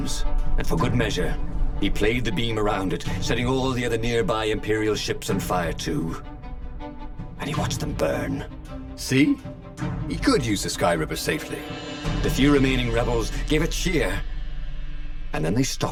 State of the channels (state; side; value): identical; both; correlation 1.00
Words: And for good measure, he played the beam around it, setting all the other nearby Imperial ships on fire too. And he watched them burn. See? He could use the Sky Ripper safely. The few remaining rebels gave a cheer. And then they